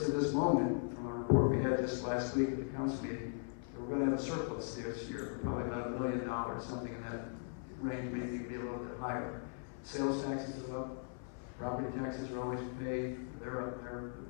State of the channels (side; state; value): right; silent; 52 dB below the other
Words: at this moment, from our report we had just last week at the council meeting, that we're going to have a surplus this year, probably about $1 million, something in that range, maybe be a little bit higher. Sales taxes are up, property taxes are always paid, they're up,